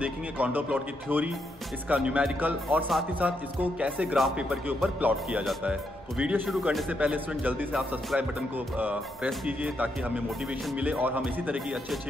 कॉन्टोर प्लॉट की थ्योरी, इसका न्यूमेरिकल और साथ ही साथ इसको कैसे ग्राफ पेपर के ऊपर प्लॉट किया जाता है। तो वीडियो शुरू करने से पहले स्टूडेंट जल्दी से आप सब्सक्राइब बटन को प्रेस कीजिए ताकि हमें मोटिवेशन मिले और हम इसी तरह की अच्छी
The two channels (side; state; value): both; normal; correlation 0.79